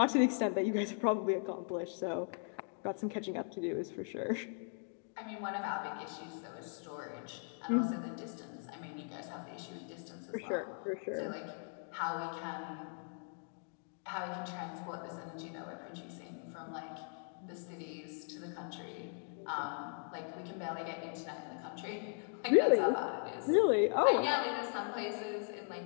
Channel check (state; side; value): silent; right; 52 dB below the other